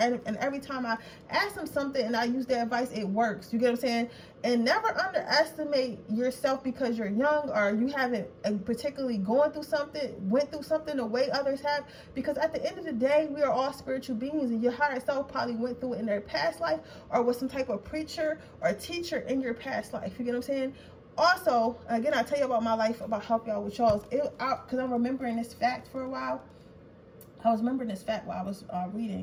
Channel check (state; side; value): identical; both; correlation 1.00